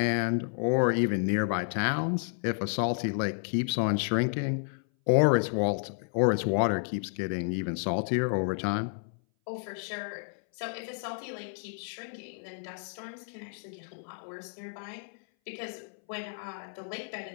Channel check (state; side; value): silent; right; 57 dB below the other